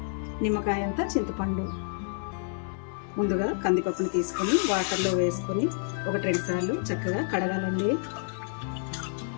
నిమ్మకాయ అంతా చింతపండు. ముందుగా కందిపప్పుని తీసుకొని వాటర్లో వేసుకొని 1-2 సార్లు చక్కగా కడగాలండి.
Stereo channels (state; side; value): silent; right; digital silence